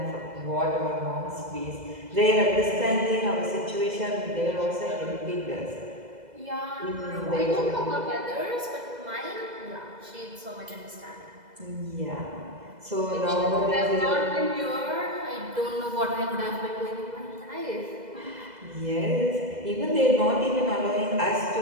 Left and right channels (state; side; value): late; left; 2.0 ms